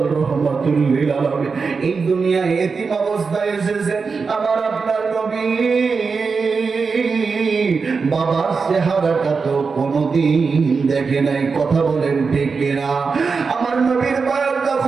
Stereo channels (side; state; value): left; quieter; 4.9 dB